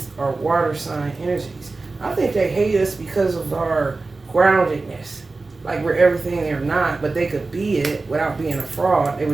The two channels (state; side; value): quieter; left; 3.6 dB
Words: are water sign energies. I think they hate us because of our groundedness. Like we're everything they're not, but they could be it without being a fraud. They